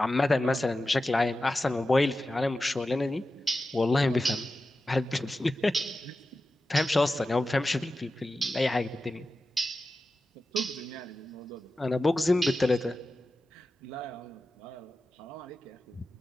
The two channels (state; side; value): normal; both; correlation 0.93